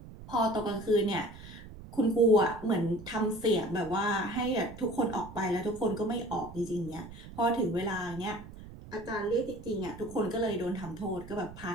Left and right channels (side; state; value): right; noise; rumble, 15 dB below the sound